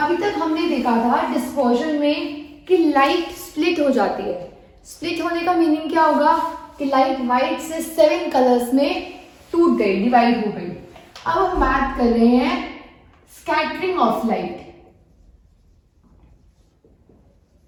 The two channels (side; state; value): both; identical; correlation 1.00